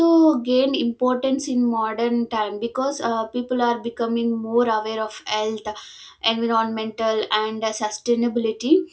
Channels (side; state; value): both; identical; correlation 1.00